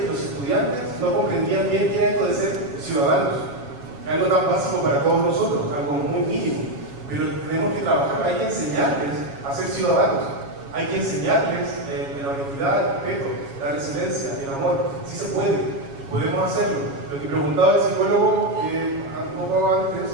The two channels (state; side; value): late; left; 7.2 ms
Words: los estudiantes no comprendían bien qué era esto de ser ciudadanos. Algo tan básico para todos nosotros, algo muy mínimo. Pero tenemos que trabajar, hay que enseñarles a ser ciudadanos. Hay que enseñarles la honestidad, el respeto, la resiliencia, el amor. Sí se puede, podemos hacerlo. Lo que preguntaba el psicólogo un poco antes,